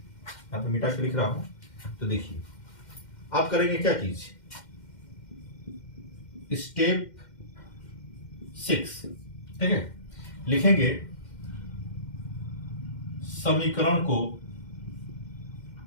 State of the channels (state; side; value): late; right; 2.1 ms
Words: पे मिटा के लिख रहा हूं। तो देखिए आप करेंगे क्या चीज, स्टेप 6, ठीक है, लिखेंगे समीकरण